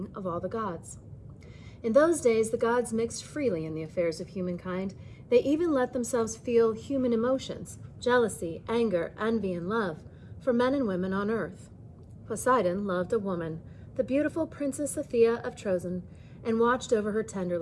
of all the gods. In those days, the gods mixed freely in the affairs of humankind. They even let themselves feel human emotions, jealousy, anger, envy, and love, for men and women on earth. Poseidon loved a woman, the beautiful Princess Athea of Trozen, and watched over her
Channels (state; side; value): identical; both; correlation 1.00